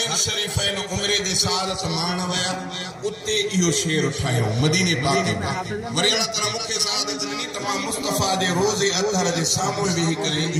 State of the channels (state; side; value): identical; both; correlation 1.00